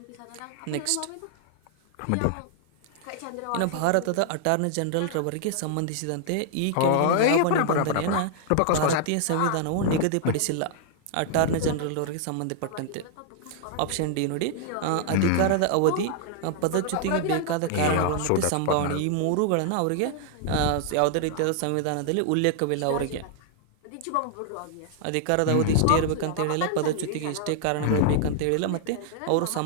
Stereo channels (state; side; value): different; both; correlation -0.01